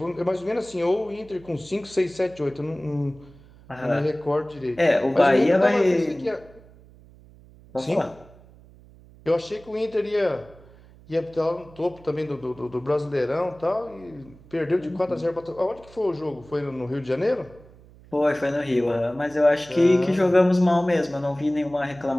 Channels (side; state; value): right; noise; hum, 24 dB below the sound